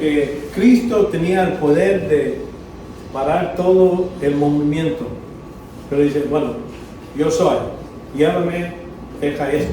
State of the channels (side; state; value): both; identical; correlation 1.00